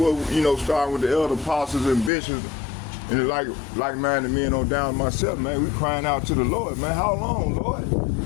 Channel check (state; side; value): drops out; right; at 2.1 s